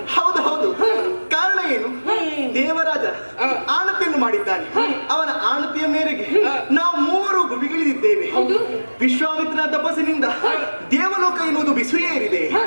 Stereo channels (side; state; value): both; inverted; correlation -1.00